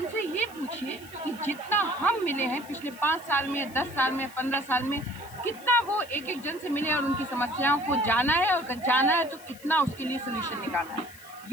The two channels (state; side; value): noise; left; hiss, 20 dB below the sound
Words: ये पूछिए कि जितना हम मिले हैं पिछले 5 साल में, 10 साल में, 15 साल में, कितना वो एक एक जन से मिले और उनकी समस्याओं को जाना है, और अगर जाना है तो कितना उसके लिए सोल्यूशन निकालना है।